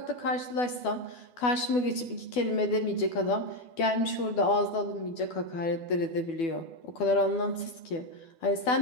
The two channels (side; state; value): right; late; 12 ms